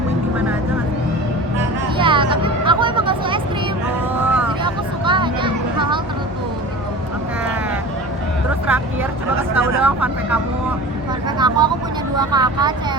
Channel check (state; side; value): normal; both; correlation 0.36